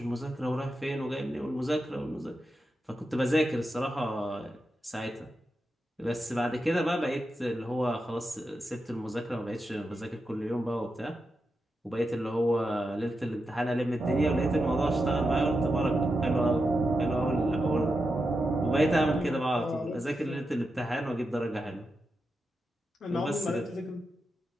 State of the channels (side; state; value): both; normal; correlation 0.88